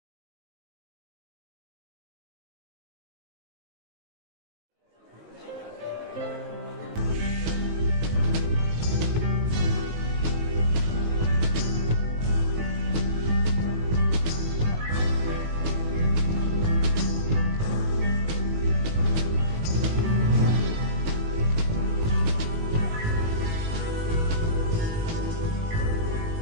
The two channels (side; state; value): left; late; 19 ms